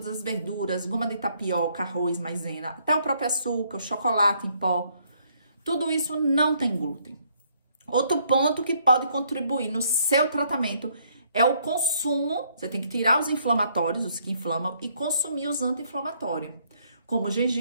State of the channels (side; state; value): both; inverted; correlation -0.68